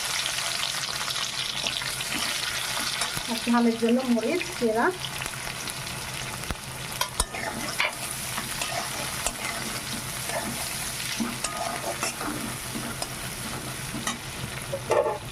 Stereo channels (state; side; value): identical; both; correlation 1.00